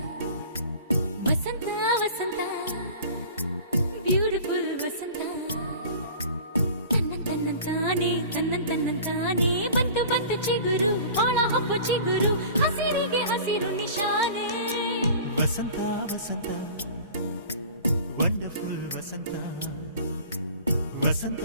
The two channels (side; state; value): both; inverted; correlation -0.42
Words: ವಸಂತ ವಸಂತ ಬ್ಯೂಟಿಫುಲ್ ವಸಂತ ತನ್ನಂತಾನೆ ಬಂತು ಬಂತು ಚಿಗುರು ಒಳ ಹಬ್ಬ ಚಿಗುರು ಹಸಿರಿಗೆ ಹಸಿರು ನಿಶಾನೆ ವಸಂತ ವಸಂತ ವಂಡರ್ಫುಲ್ ವಸಂತ ವಸಂತ